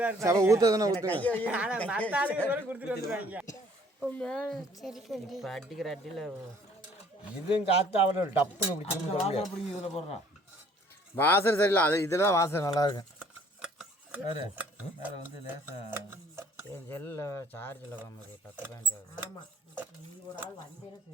ஊற்றதுன்னா ஊற்றுங்க. இப்போ அடிக்கிற அடியில் இதுவும் காற்று அவரை டப்புன்னு பிடிச்சி இதில் போடுறான். வாசனை சரியில்லை, அது இதில் தான் வாசனை நல்லா இருக்கும். வேறு வேறு வந்து லேசாக என் செல்லில் சார்ஜில் வாங்குது 10 பேண்ட். ஆமாம், நீ ஒரு ஆள் வந்தேன்னு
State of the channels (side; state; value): both; normal; correlation 0.58